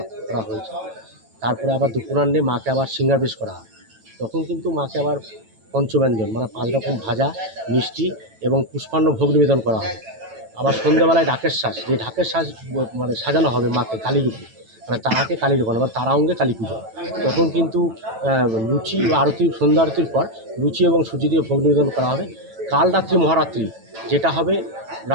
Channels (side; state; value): left; late; 9.0 ms